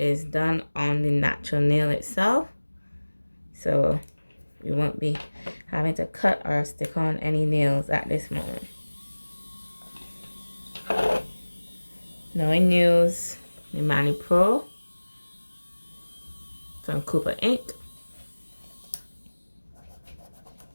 done on the natural nail itself, so we won't be having to cut or stick on any nails at this moment. Now I use the Mani Pro from Cooper ink.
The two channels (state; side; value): inverted; both; correlation -1.00